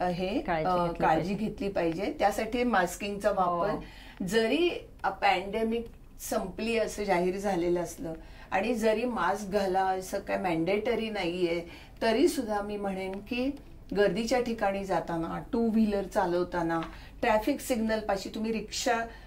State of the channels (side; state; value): both; identical; correlation 1.00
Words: काळजी घेतली पाहिजे. त्यासाठी मास्किंगचा वापर, जरी पॅन्डेमिक संपली असं जाहीर झालेलं असलं आणि जरी मास्क घाला असं काय मॅन्डेटरी नाहीये, तरी सुद्धा मी म्हणेन की गर्दीच्या ठिकाणी जाताना, टू व्हीलर चालवताना, ट्रॅफिक सिग्नल पाशी, तुम्ही रिक्षा